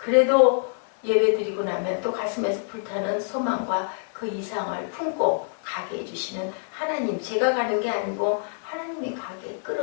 예배드리고 나면 또 가슴에서 불타는 소망과 그 이상을 품고 가게 해주시는 하나님, 제가 가는 게 아니고 하나님이 가게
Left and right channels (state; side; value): silent; right; 56 dB below the other